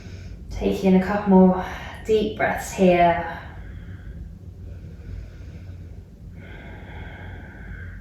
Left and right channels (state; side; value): identical; both; correlation 1.00